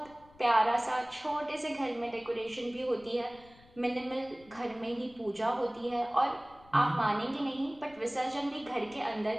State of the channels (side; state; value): left; noise; rumble, 25 dB below the sound